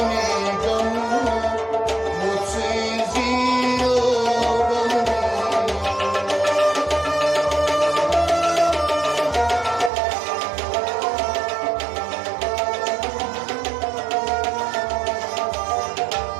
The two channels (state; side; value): drops out; left; at 9.9 s